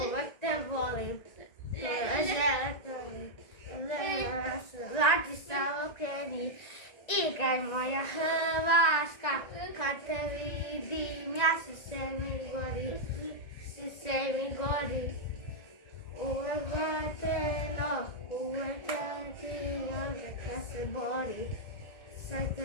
uvek te volim, to je žele tvojim. Vladi se okreni, igraj moja Hrvatska, kad te vidim, ja se mi gori, se mi gori. Uvek vateno, uvek ti onda kad se bori, sad te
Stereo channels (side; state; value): right; late; 1.9 ms